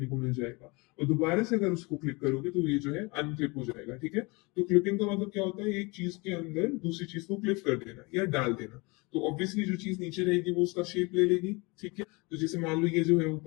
को मिल जाएगा, और दोबारा से अगर उसको क्लिक करोगे तो ये जो है अनक्लिप हो जाएगा। ठीक है, तो क्लिपिंग का मतलब क्या होता है, एक चीज के अंदर दूसरी चीज को क्लिप कर देना या डाल देना। तो ऑब्वियसली जो चीज नीचे रहेगी वो उसका शेप ले लेगी। ठीक है, तो जैसे मान लो ये जो है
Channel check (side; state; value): right; quieter; 27.0 dB